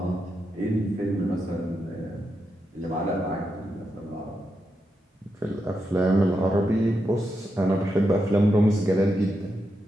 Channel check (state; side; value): normal; both; correlation 0.85